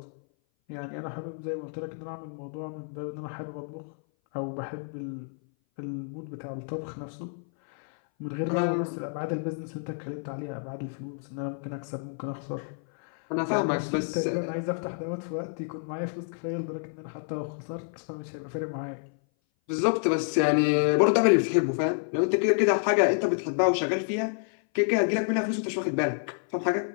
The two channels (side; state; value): right; silent; 58 dB below the other